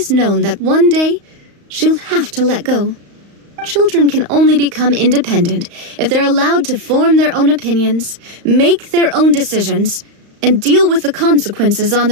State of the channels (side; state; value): left; late; 35 ms